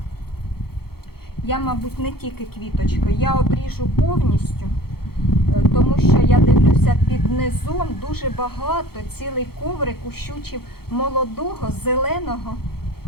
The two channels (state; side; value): late; right; 0.95 ms